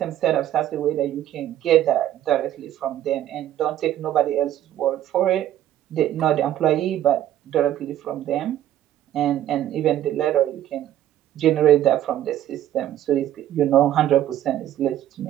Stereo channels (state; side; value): quieter; left; 12.2 dB